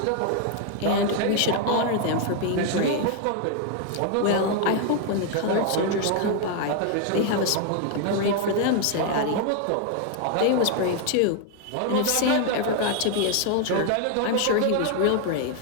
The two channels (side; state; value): both; different; correlation 0.00